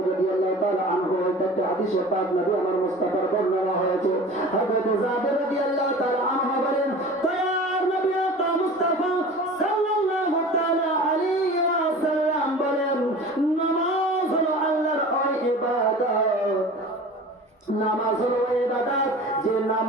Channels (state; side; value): normal; both; correlation 0.39